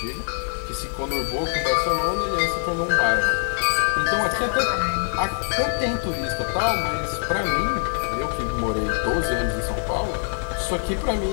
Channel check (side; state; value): right; silent; digital silence